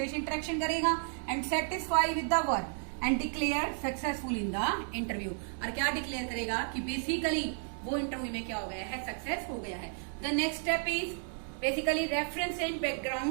इंटरेक्शन करेगा and satisfy with the work and declare successful in the interview. और क्या डिक्लेयर करेगा कि बेसिकली वो इंटरव्यू में क्या हो गया है, सक्सेस हो गया है। The next step is basically reference and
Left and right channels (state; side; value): silent; left; 56 dB below the other